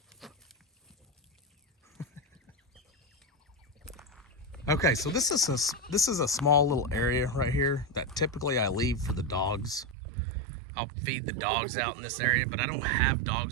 Okay, so this is a small little area right here that typically I leave for the dogs. I'll feed the dogs out in this area, but I don't have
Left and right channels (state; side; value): drops out; left; at 10.0 s